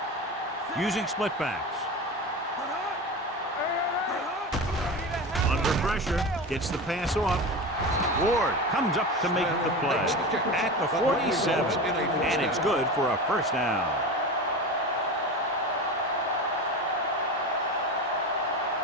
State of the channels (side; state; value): both; normal; correlation 0.26